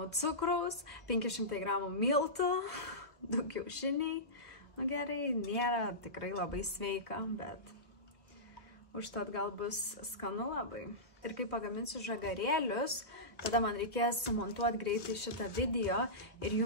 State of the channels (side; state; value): both; normal; correlation -0.17